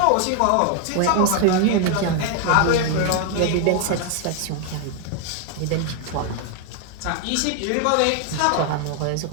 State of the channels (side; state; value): both; different; correlation 0.00